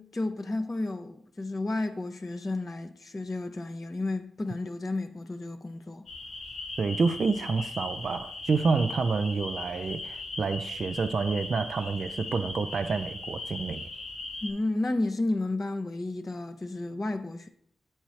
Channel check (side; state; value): both; normal; correlation 0.90